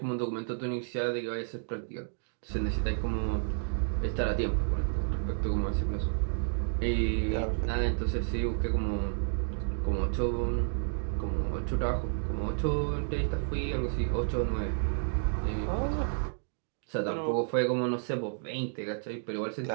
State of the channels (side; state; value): left; silent; digital silence